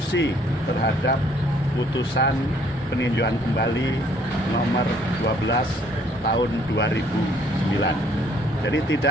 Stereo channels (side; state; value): both; normal; correlation 0.63